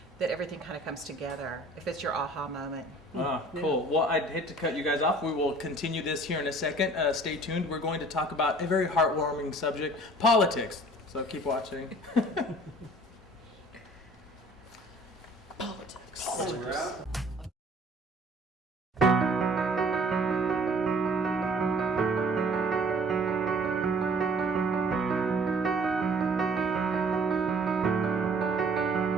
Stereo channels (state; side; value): normal; both; correlation 0.52